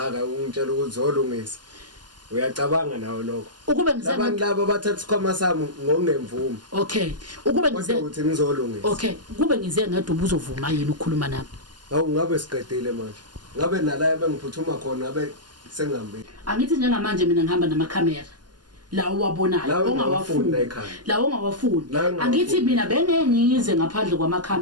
ungitshela ukuthi zolungisa. Uyacabanga nawo lokho. Ukube ngize abantu laba bathatha isikhwama sami ngokungemvumo. Okay. Ukube ngize ukuthi ngizolungisa. Okay. Kube ngize ngedwa ubuzovuma yini ukukhuluma nami? Hawu ngabe siqedile manje. Ngabe nala bengiphuthuma khona ngabe sengihambe. Angithi njengamanje mina ngihamba namakhamera. La uwabonayo ongawafuni la ongawafuni angithi mina bengengize ngaphandle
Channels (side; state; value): left; late; 0.70 ms